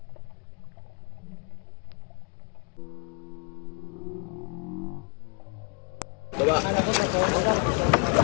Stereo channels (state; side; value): quieter; right; 33.3 dB